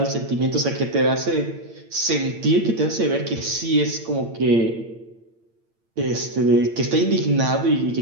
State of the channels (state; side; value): late; left; 8.8 ms